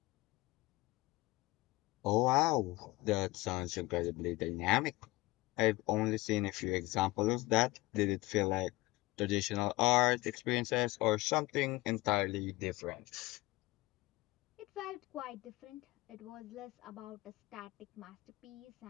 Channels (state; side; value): quieter; right; 20.6 dB